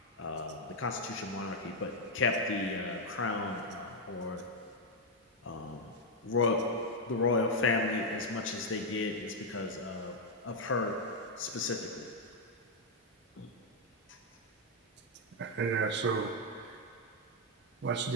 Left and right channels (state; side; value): normal; both; correlation 0.00